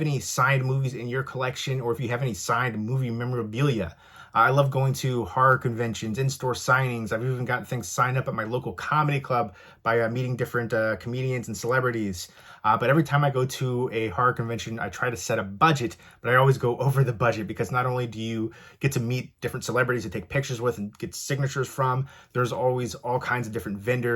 any signed movies in your collection or if you have any signed movie memorabilia. I love going to horror conventions, in-store signings. I've even gotten things signed up at my local comedy club by meeting different comedians and celebrities. But every time I go to a horror convention, I try to set a budget, but I always go over the budget because not only do you get to meet different celebrities to take pictures with and get signatures from, there's always all kinds of different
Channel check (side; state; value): both; identical; correlation 1.00